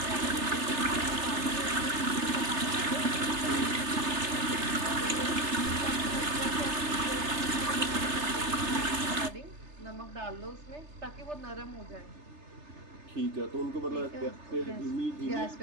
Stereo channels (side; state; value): left; late; 3.3 ms